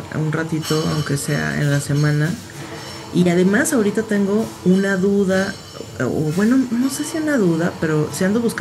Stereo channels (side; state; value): both; identical; correlation 1.00